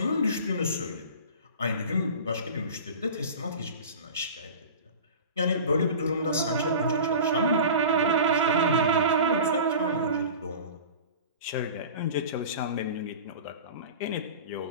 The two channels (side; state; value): both; inverted; correlation -0.36